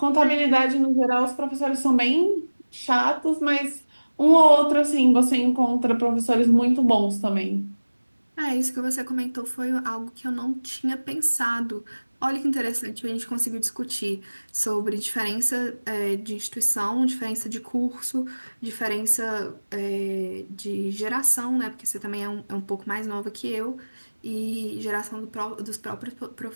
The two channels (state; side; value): inverted; both; correlation -1.00